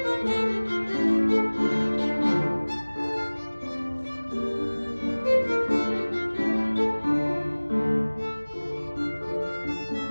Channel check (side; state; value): both; inverted; correlation -1.00